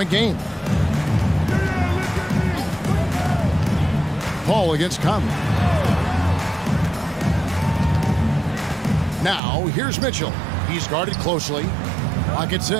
game. Paul against Conley. Now here's Mitchell. He's guarded closely. Clock at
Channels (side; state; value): left; drops out; at 9.4 s